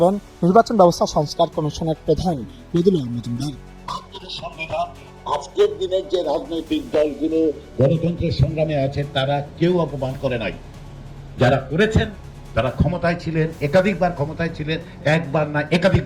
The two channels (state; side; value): identical; both; correlation 1.00